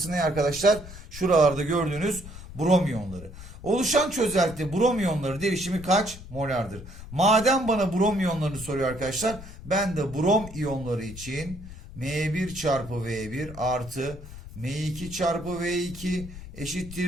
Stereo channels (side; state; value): left; noise; rumble, 14 dB below the sound